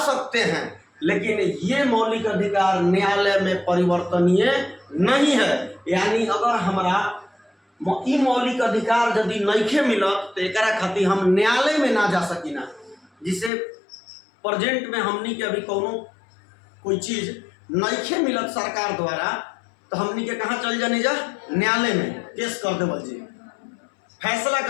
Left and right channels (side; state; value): right; drops out; at 13.5 s